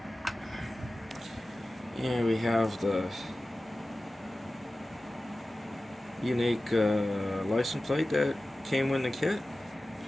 And we have the unique license plate that came with the kit.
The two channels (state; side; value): normal; both; correlation 0.96